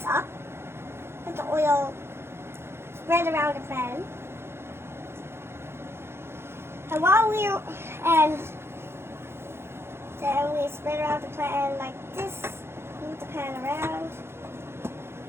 up. Let the oil spread around the pan. And then we spread around the pan like this. Move the pan around.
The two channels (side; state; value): left; late; 0.12 ms